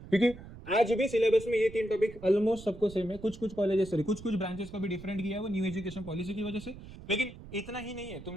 क्योंकि आज भी सिलेबस में ये 3 टॉपिक ऑलमोस्ट सबको सेम है, कुछ कुछ कॉलेजेस सॉरी कुछ कुछ ब्रांचेस को भी डिफरेंट किया है वो न्यू एजुकेशन पॉलिसी की वजह से, लेकिन इतना ही नहीं है। तुम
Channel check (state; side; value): noise; right; rumble, 16 dB below the sound